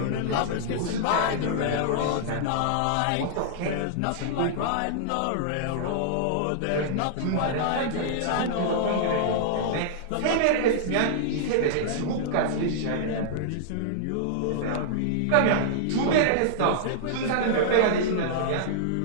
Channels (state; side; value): different; both; correlation -0.01